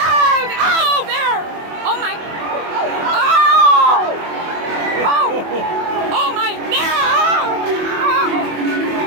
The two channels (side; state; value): left; late; 24 ms